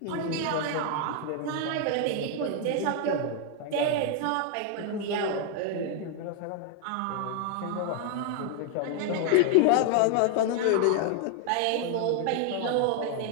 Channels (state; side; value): different; both; correlation 0.00